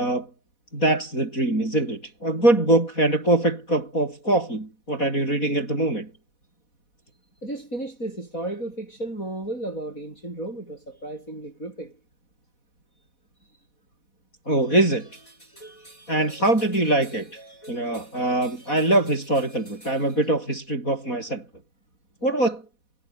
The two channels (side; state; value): right; late; 4.1 ms